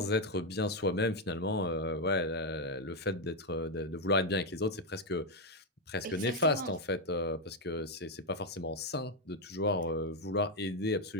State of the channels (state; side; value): normal; both; correlation 0.04